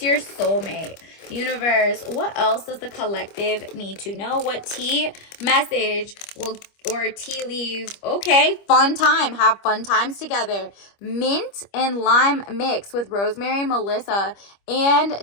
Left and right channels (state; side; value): late; right; 25 ms